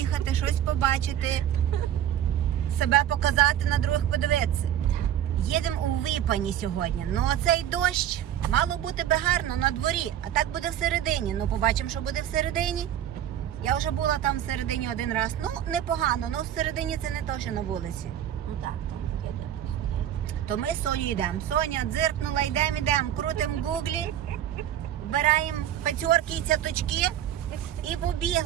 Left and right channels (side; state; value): left; quieter; 10.8 dB